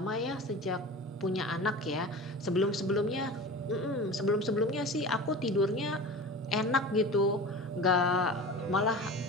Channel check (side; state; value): both; normal; correlation 0.34